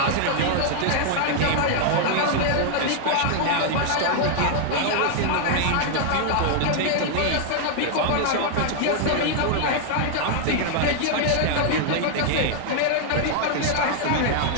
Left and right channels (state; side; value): different; both; correlation 0.00